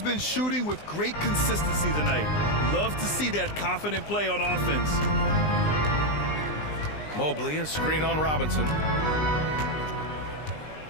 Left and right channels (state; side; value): late; right; 20 ms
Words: been shooting with great consistency tonight. Love to see that confident play on offense. Mobley, a screen on Robinson.